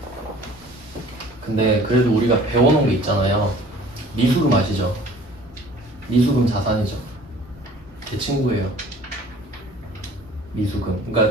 근데 그래도 우리가 배워놓은 게 있잖아요. 미수금 아시죠? 미수금 자산이죠. 제 친구예요. 미수금.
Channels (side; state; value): both; normal; correlation 0.50